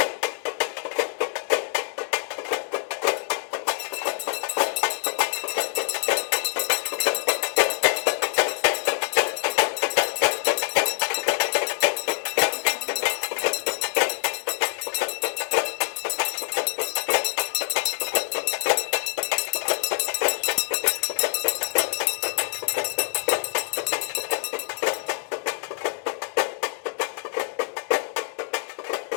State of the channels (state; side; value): silent; right; digital silence